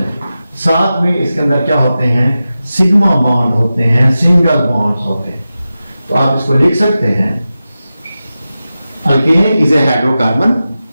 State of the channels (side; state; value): both; inverted; correlation -0.93